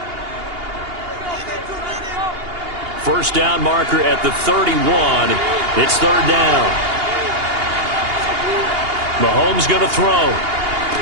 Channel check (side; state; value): left; late; 2.8 ms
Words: First down marker at the 31. It's 3rd down. Mahomes going to throw.